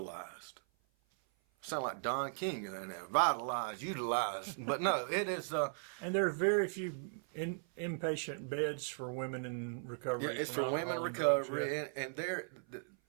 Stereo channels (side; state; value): left; silent; 53 dB below the other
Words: Sound like Don King in there, vitalized, utilized, but no, it is. And there are very few inpatient beds for women in recovery. Yeah, it's for women in recovery, and